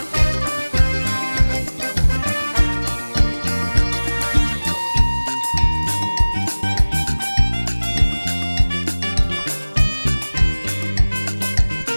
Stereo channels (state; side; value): inverted; both; correlation -1.00